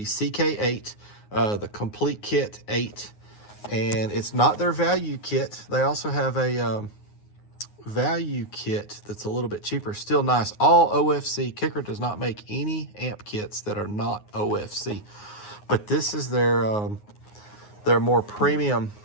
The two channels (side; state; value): right; late; 9.6 ms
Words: CK8, the complete kit 8, and it's not their value kit. They also have a value kit that's a little bit cheaper, still nice. All OFC. Kicker does not make any amp kits that are not OFC, but this is their more premium